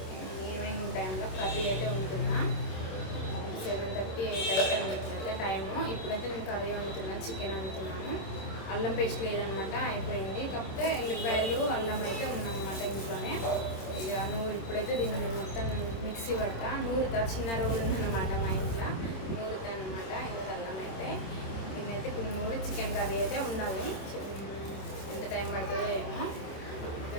ఈవినింగ్ టైంలో కర్రీ అయితే వండుతున్నా. 7:30 8 అయితే వండుతుంటే టైము. ఇప్పుడైతే నేను కర్రీ వండుతున్నాను, చికెన్ వండుతున్నాను. అల్లం పేస్ట్ లేదనమాట, అయిపోయింది. కాకపోతే ఎల్లిపాయలు అల్లం అయితే ఉందన్నమాట ఇంట్లోనే. ఇక ఇప్పుడైతే దీన్ని మొత్తం మిక్సీ పడతా, నూరుతా. చిన్న రోల్ ఉందన్నమాట మా ఇంట్లో, నూరుతా అనమాట. ఇది అల్లం అయితే దీన్నైతే నూరి చికెన్ కర్రీ అయితే ఉండాలి. ఎంత టైం పడుతుందో ఏమో. Okay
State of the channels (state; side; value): late; right; 26 ms